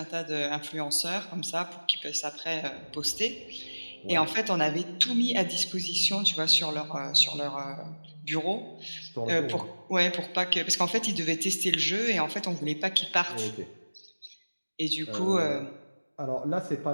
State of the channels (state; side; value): inverted; both; correlation -1.00